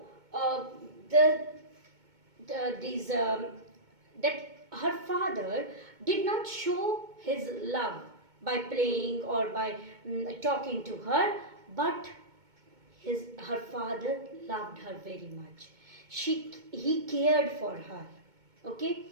the these that her father did not show his love by playing or by talking to her, but her father loved her very much. He cared for her.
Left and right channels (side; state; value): left; late; 2.2 ms